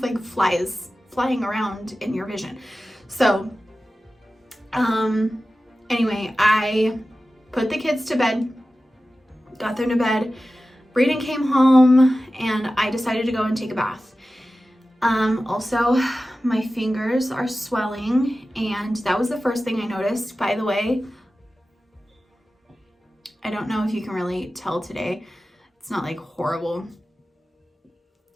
flies flying around in your vision. So anyway, I put the kids to bed, got them to bed. Brayden came home and I decided to go and take a bath. Also, my fingers are swelling, and that was the first thing I noticed. By the way, I don't know if you can really tell today. It's not like horrible.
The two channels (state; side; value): normal; both; correlation 0.95